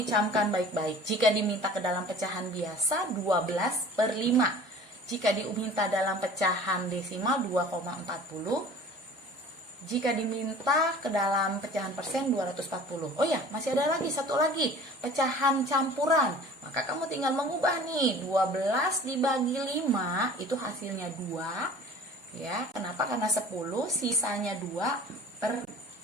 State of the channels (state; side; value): normal; both; correlation 0.45